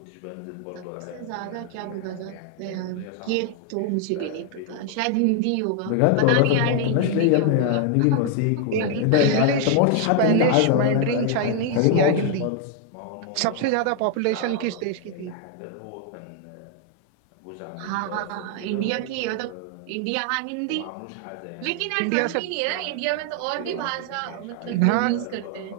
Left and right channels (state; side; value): different; both; correlation 0.00